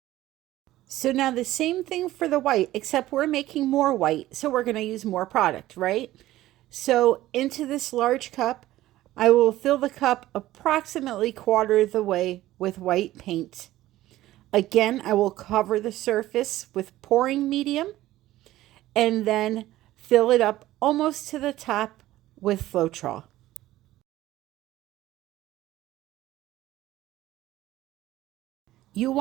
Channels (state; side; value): quieter; left; 15.4 dB